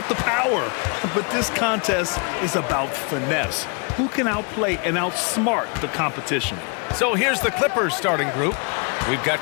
the power. But this contest is about finesse. Who can outplay and outsmart the competition? So here's the Clippers starting group. We've got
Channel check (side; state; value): right; quieter; 35.7 dB